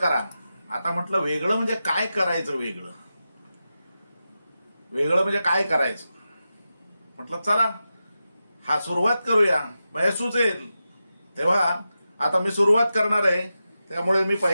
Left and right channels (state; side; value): inverted; both; correlation -0.91